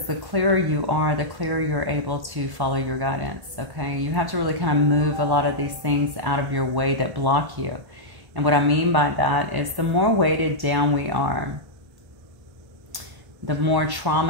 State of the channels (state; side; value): late; left; 1.1 ms